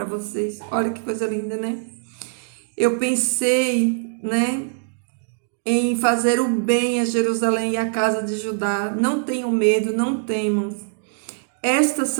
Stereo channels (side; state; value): left; silent; digital silence